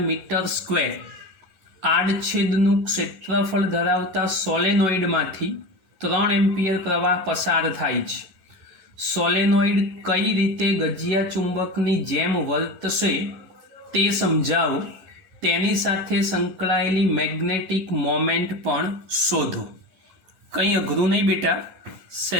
મીટર સ્ક્વેર આડછેદનું ક્ષેત્રફળ ધરાવતા સોલેનોઇડમાંથી 3 એમ્પિયર પ્રવાહ પસાર થાય છે। સોલેનોઇડ કઈ રીતે ગજિયા ચુંબકની જેમ વર્તશે તે સમજાવો, તેની સાથે સંકળાયેલી મેગ્નેટિક મોમેન્ટ પણ શોધો। કંઈ અઘરું નહીં બેટા,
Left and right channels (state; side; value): late; left; 9.8 ms